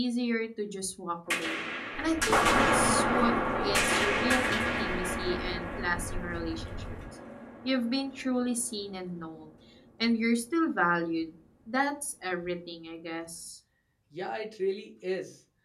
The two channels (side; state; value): both; identical; correlation 1.00